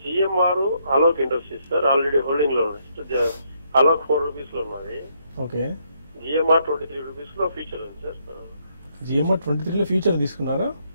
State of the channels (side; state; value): both; inverted; correlation -0.73